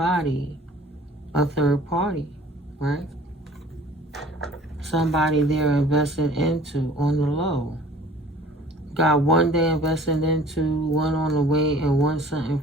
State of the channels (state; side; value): normal; both; correlation 0.49